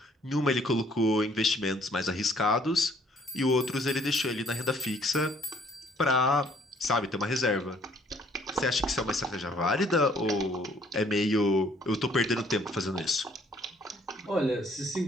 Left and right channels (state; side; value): normal; both; correlation 0.62